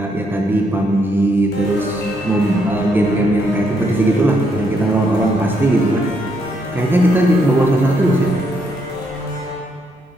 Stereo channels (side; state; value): both; normal; correlation 0.75